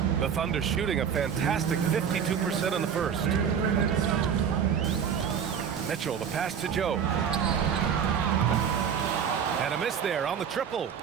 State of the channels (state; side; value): quieter; left; 7.6 dB